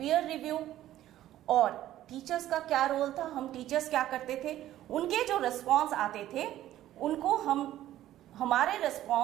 review. और टीचर्स का क्या रोल था, हम टीचर्स क्या करते थे, उनके जो रिस्पॉन्स आते थे उनको हम हमारे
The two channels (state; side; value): quieter; left; 13.4 dB